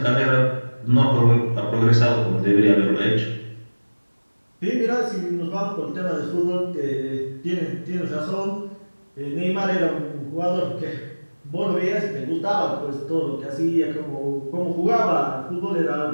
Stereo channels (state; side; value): inverted; both; correlation -1.00